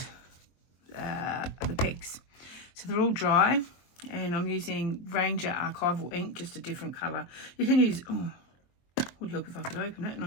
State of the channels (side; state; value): right; late; 23 ms